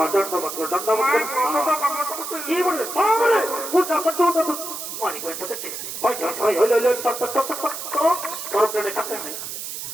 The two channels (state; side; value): noise; right; hiss, 7 dB below the sound